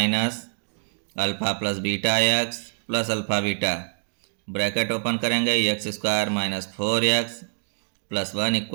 alpha plus beta x plus alpha beta, bracket open करेंगे x² माइनस 4x +1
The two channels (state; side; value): silent; left; 62 dB below the other